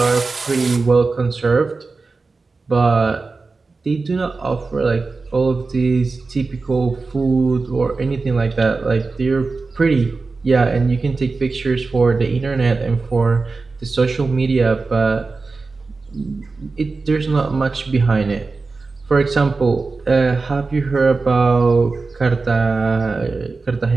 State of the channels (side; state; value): left; quieter; 4.0 dB